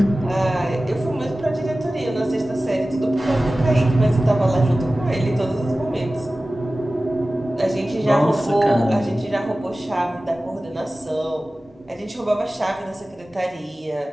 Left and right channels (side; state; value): both; normal; correlation 0.96